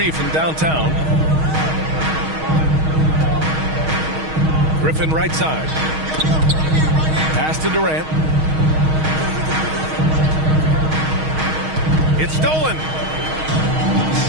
from downtown. Griffin right side. Pass to Durant. It's stolen.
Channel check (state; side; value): late; left; 6.4 ms